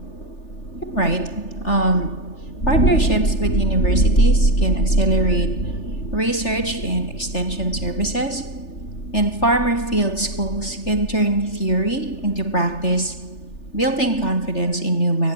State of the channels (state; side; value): late; right; 3.4 ms